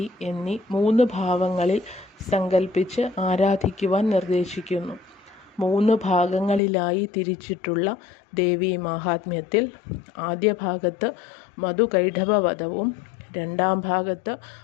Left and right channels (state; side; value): drops out; right; at 6.6 s